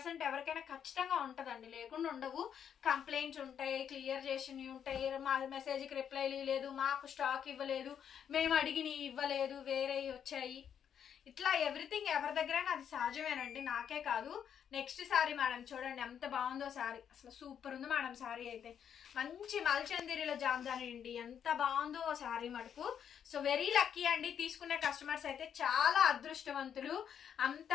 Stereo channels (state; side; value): quieter; right; 8.5 dB